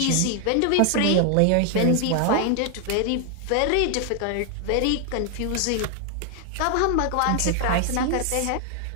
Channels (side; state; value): both; different; correlation 0.00